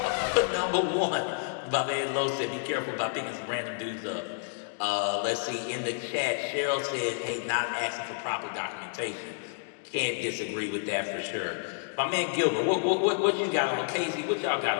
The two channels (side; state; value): right; silent; digital silence